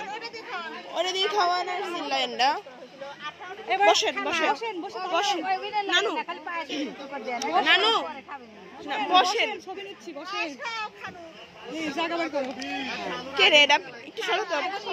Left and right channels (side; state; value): both; identical; correlation 1.00